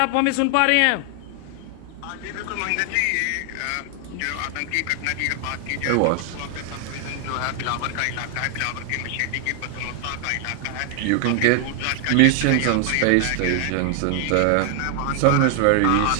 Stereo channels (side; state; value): both; different; correlation 0.00